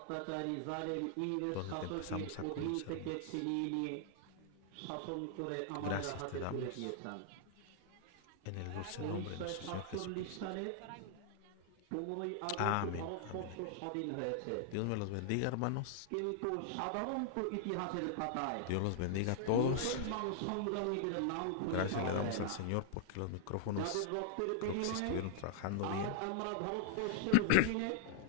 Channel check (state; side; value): different; both; correlation -0.01